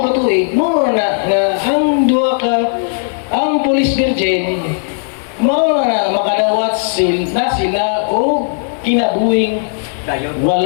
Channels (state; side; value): silent; right; digital silence